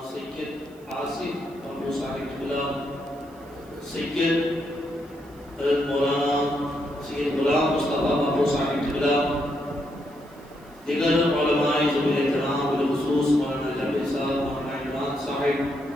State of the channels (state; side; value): noise; right; hiss, 29 dB below the sound